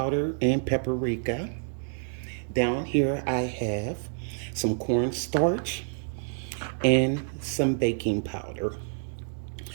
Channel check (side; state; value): left; silent; 59 dB below the other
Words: and paprika. Down here I have some cornstarch and some baking powder.